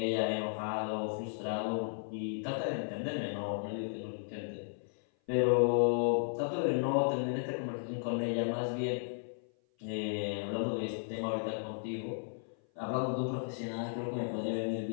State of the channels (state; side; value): silent; right; 55 dB below the other